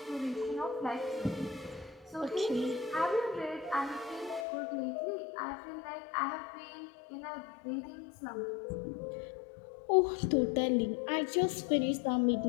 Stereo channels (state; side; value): drops out; right; at 4.5 s